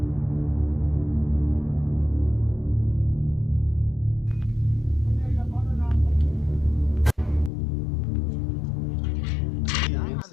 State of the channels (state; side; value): drops out; right; at 7.5 s